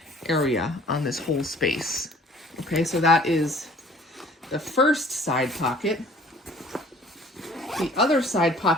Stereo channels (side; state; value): both; normal; correlation 0.52